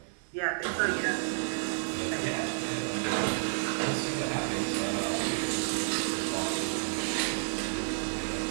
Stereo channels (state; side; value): silent; left; digital silence